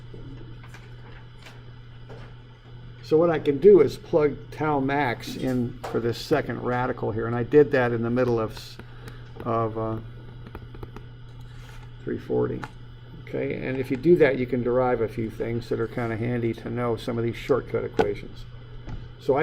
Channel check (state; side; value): identical; both; correlation 1.00